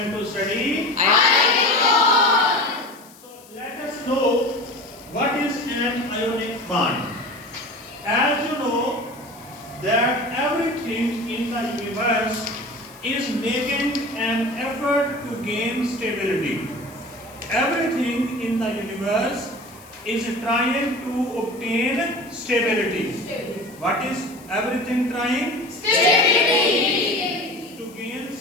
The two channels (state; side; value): noise; left; hiss, 23 dB below the sound